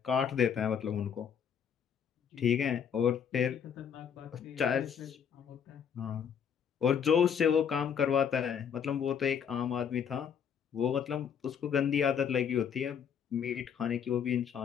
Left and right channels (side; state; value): right; quieter; 7.7 dB